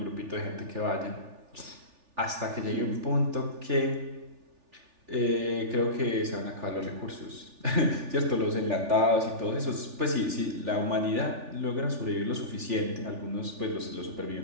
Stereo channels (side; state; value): left; late; 3.4 ms